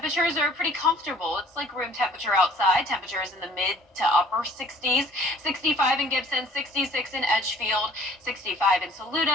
are pretty comfortable. It's like room temperature outside. Temperatures in the mid to upper 60s. 65 in Gibson, 66 in Edgefield, 65 in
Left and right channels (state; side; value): normal; both; correlation 0.55